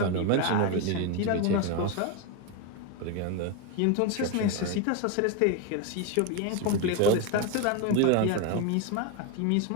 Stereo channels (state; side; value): different; both; correlation 0.03